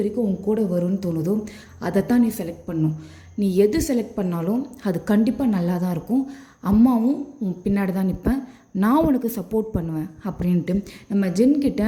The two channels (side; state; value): both; identical; correlation 1.00